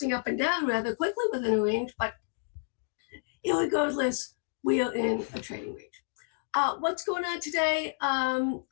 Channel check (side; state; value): right; silent; digital silence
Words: up and down rather quickly within a range, but regardless, we are in a trading range. What's going on today?